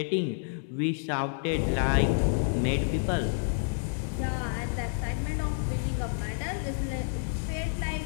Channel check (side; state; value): right; silent; 58 dB below the other